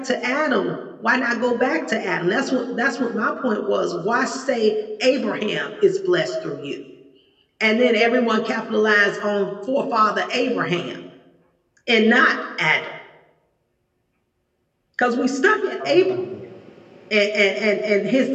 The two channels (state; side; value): identical; both; correlation 1.00